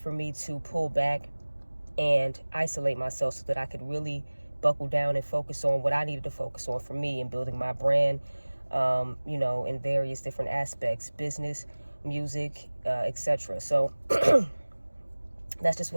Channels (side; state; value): both; inverted; correlation -1.00